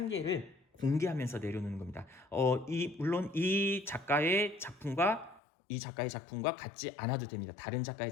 개를 공개하면서 내려놓는 겁니다. 물론 이 작가의 작품과 같지 않아도 됩니다. 다른 작가의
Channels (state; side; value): drops out; right; at 5.4 s